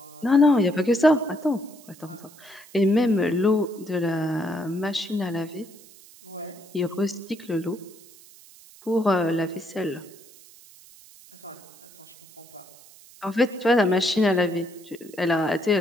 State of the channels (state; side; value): noise; right; hiss, 23 dB below the sound